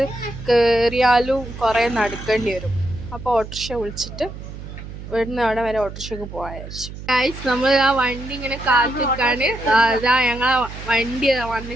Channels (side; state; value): right; noise; hum, 12 dB below the sound